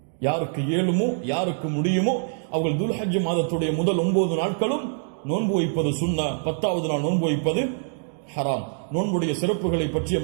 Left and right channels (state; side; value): silent; left; digital silence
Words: யாருக்கு இயலுமோ யாருக்கு முடியுமோ அவர்கள் துல்ஹஜ் மாதத்துடைய முதல் 9 நாட்களும் நோன்பு வைப்பது சுன்னா, 10வது நாள் நோன்பு வைப்பது ஹராம். நோன்புடைய சிறப்புகளை பற்றி